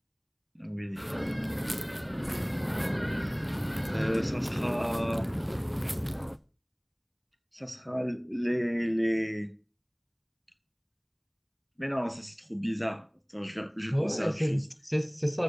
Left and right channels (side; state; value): both; identical; correlation 1.00